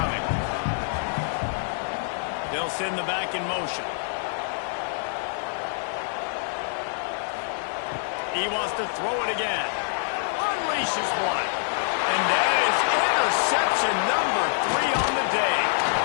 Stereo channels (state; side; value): silent; right; digital silence